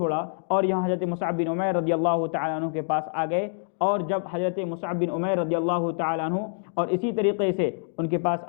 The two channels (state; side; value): silent; right; digital silence